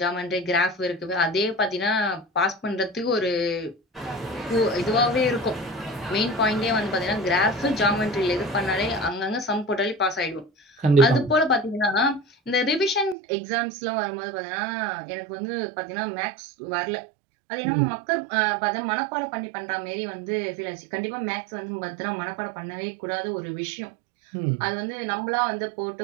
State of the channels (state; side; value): drops out; left; at 13.2 s